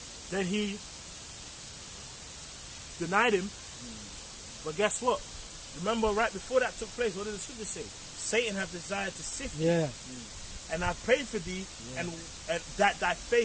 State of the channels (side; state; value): both; identical; correlation 1.00